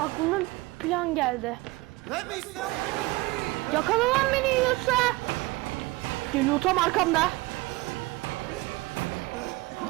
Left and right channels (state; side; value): quieter; left; 21.7 dB